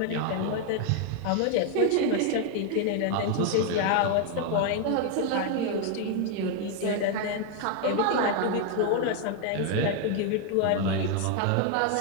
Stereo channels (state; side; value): different; both; correlation 0.01